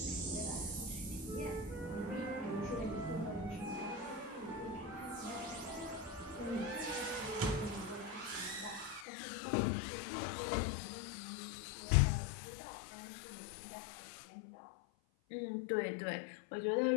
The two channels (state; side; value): drops out; right; at 9.1 s